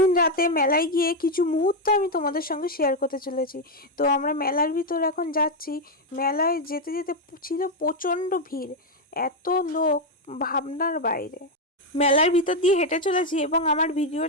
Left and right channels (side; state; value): both; normal; correlation 0.04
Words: রাতে মেলায় গিয়ে কিছু মুহূর্ত আমি তোমাদের সঙ্গে শেয়ার করতে চলেছি। তো আমরা মেলার ভিতর এখন যাচ্ছি। মেলায় যেতে যেতে ছিল প্রচণ্ড ভিড়, এত লোক ভাবনার বাইরে। মেলার ভিতর দিয়ে হেঁটে চলেছি এবং আমার